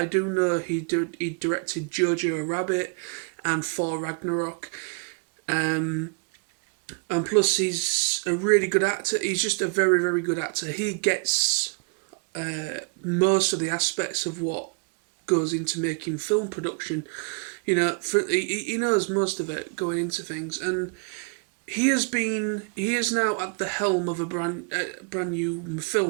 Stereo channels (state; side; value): quieter; left; 35.8 dB